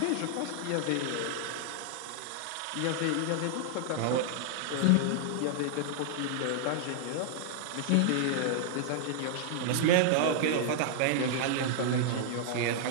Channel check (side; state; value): both; different; correlation -0.01